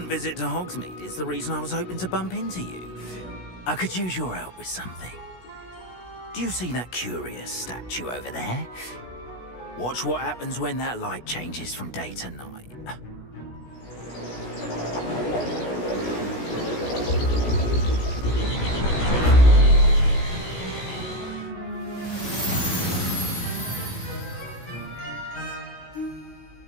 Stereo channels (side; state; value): right; late; 16 ms